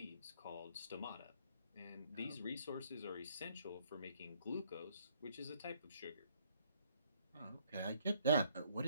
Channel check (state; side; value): inverted; both; correlation -0.65